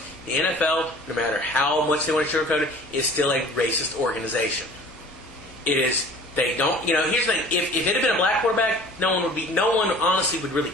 the NFL, no matter how much they want to sugarcoat it, is still a racist organization. It is. They don't. Here's the thing. If it had been a black quarterback, no one honestly would really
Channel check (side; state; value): left; noise; hum, 24 dB below the sound